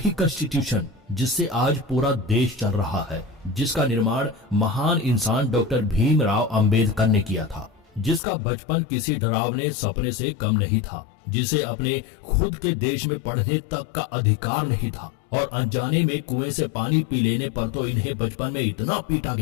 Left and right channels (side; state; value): right; drops out; at 8.2 s